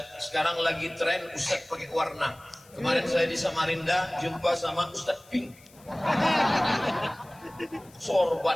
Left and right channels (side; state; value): left; noise; hiss, 26 dB below the sound